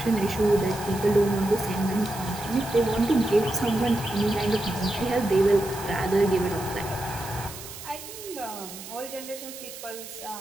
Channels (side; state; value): right; noise; hiss, 13 dB below the sound